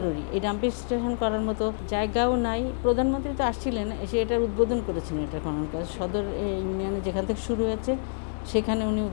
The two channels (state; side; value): silent; right; digital silence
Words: এই ডাম্পিং স্টেশন করার মতো জায়গাও নাই। প্রধানমন্ত্রী তো আসছিলেন, এসে এটার উদ্বোধন করেছেন। এটা খনন কাজ সদর ইউনিয়নে যেখান থেকে শুরু হয়েছে সেখানে উনি